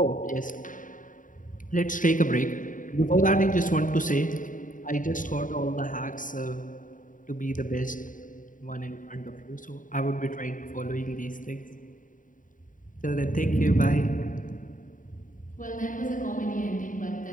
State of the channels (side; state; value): right; late; 0.38 ms